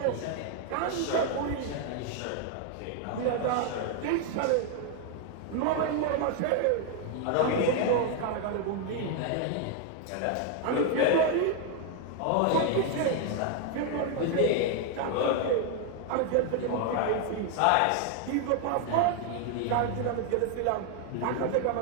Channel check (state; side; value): different; both; correlation 0.00